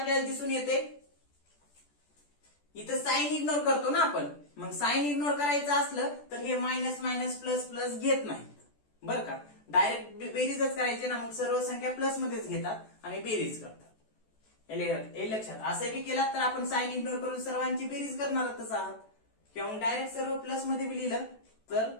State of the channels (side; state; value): right; late; 14 ms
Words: दिसून येते, इथं साइन इग्नोर करतो ना आपण. मग साइन इग्नोर करायचं असलं तर हे मायनस मायनस प्लस प्लस घेत नाहीत बरं का, डायरेक्ट बेरीजच करायचे ना. मग सर्व संख्या प्लस मध्येच घेतात आणि बेरीज करतात. हे लक्षात. असं बी केलात तर आपण साइन इग्नोर करून सर्वांची बेरीज करणारच आहात, किंवा मग डायरेक्ट सर्व प्लस मध्ये बी लिहिलं तर